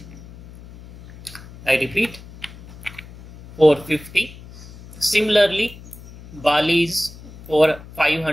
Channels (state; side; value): noise; left; hum, 18 dB below the sound